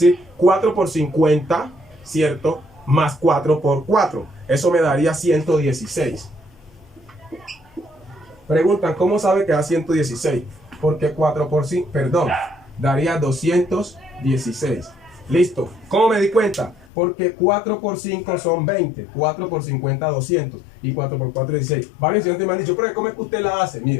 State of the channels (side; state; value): right; drops out; at 16.9 s